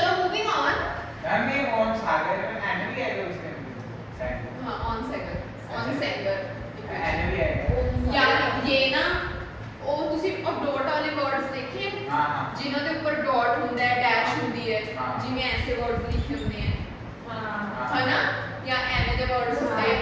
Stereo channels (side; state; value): both; identical; correlation 1.00